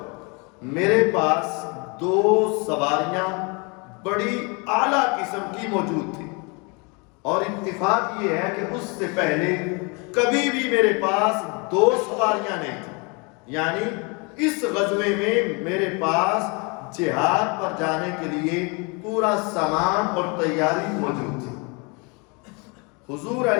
میرے پاس 2 سواریاں بڑی اعلیٰ قسم کی موجود تھی، اور اتفاق یہ ہے کہ اس سے پہلے کبھی بھی میرے پاس 2 سواریاں نہیں تھیں، یعنی اس غزوے میں میرے پاس جہاد پر جانے کے لیے پورا سامان اور تیاری موجود تھی۔ حضور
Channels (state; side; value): quieter; right; 31.0 dB